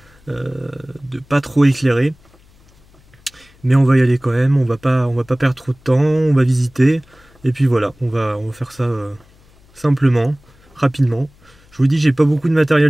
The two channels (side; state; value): left; noise; hum, 29 dB below the sound